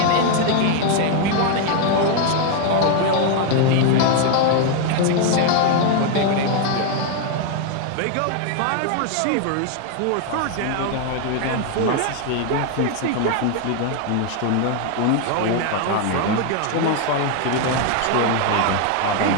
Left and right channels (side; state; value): both; different; correlation 0.00